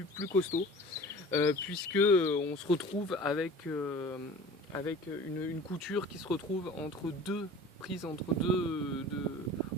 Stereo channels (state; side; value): normal; both; correlation 0.42